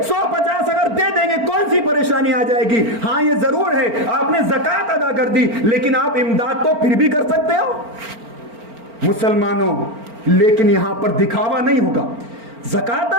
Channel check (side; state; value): left; late; 4.4 ms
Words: 150 اگر دے دیں گے، کون سی پریشانی آ جائے گی؟ ہاں یہ ضرور ہے آپ نے زکوٰۃ ادا کر دی، لیکن آپ امداد تو پھر بھی کر سکتے ہو مسلمانوں۔ لیکن یہاں پر دکھاوا نہیں ہوگا۔ زکوٰۃ